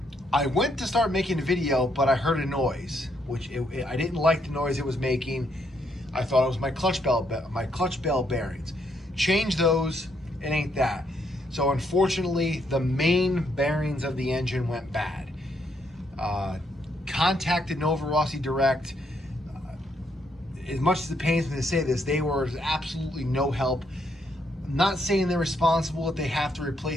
I went to start making a video, but I heard a noise, which I didn't like the noise it was making. I thought it was my clutch bell bearings. Change those, it ain't that. So unfortunately, the main bearings of the engine went bad. Contacted Novarossi direct. As much as it pains me to say this, they were absolutely no help. I'm not saying they're responsible if they have to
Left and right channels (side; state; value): both; normal; correlation 0.74